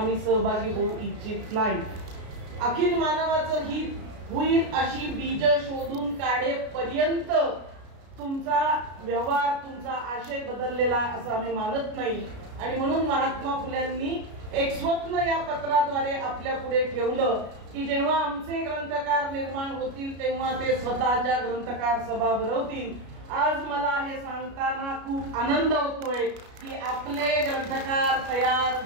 सहभागी होऊ इच्छित नाही. अखिल मानवाचं हित होईल अशी बीज शोधून काढेपर्यंत तुमचा व्यवहार, तुमचा आशय बदललेला असं आम्ही मानत नाही. आणि म्हणून महात्मा फुल्यांनी एक स्वप्न या पत्राद्वारे आपल्या पुढे ठेवलं की जेव्हा आमचे ग्रंथकार निर्माण होतील तेव्हा ते स्वतःच्या ग्रंथकार सभा भरवतील. आज मला हे सांगताना खूप आनंद होतोय की आपले ग्रंथकार तयार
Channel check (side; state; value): left; late; 33 ms